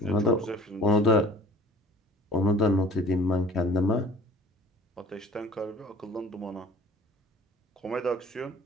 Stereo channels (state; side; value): normal; both; correlation 0.47